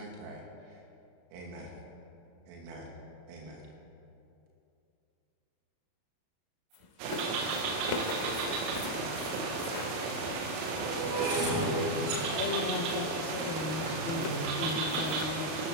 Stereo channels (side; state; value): left; late; 33 ms